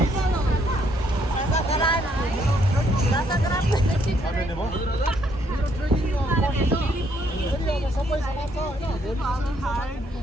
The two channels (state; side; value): normal; both; correlation 0.70